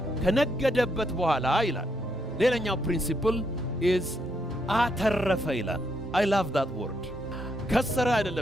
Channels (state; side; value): normal; both; correlation 0.77